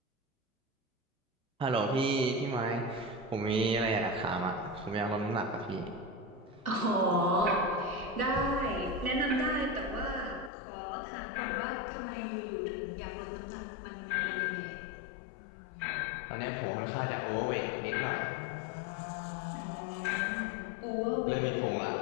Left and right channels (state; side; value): drops out; right; at 10.5 s